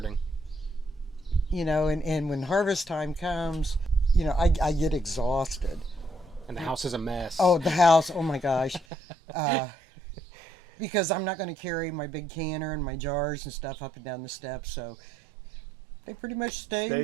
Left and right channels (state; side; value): drops out; left; at 8.8 s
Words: You know, and when harvest time comes, you know, I get exhausted. And the house is a mess. Oh, the house! Oh my gosh, because I'm not going to carry my big canner and my jars and stuff up and down the steps, so they pretty much stay in